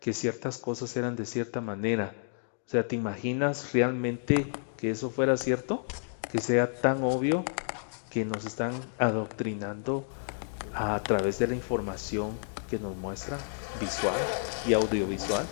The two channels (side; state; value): right; silent; digital silence